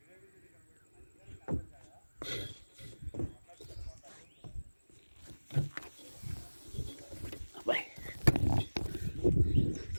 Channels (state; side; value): inverted; both; correlation -1.00